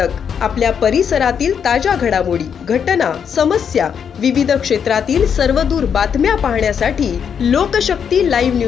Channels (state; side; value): quieter; right; 7.5 dB